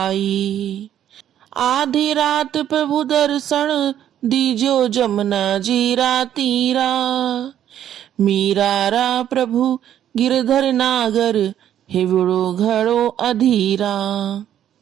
आधी रात प्रभु दर्शन दीजो जमुना जीरा तीरा, मीरारा प्रभु गिरधर नागर हिवड़ो घड़ो अधीरा।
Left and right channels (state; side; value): quieter; left; 10.7 dB